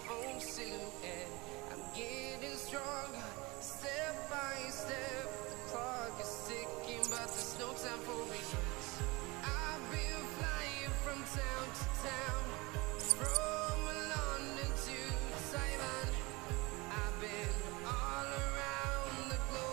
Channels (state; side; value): quieter; left; 24.3 dB